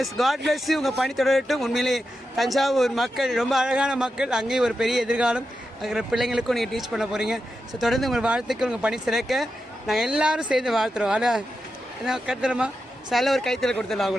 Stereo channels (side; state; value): both; normal; correlation 0.88